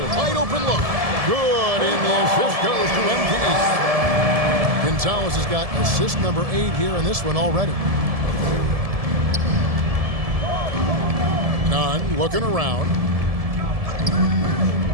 open look. Good, and the assist goes to MD. Gonzalez has got assist number 8 here in this one already. Nunn looking around.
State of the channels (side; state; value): left; late; 1.7 ms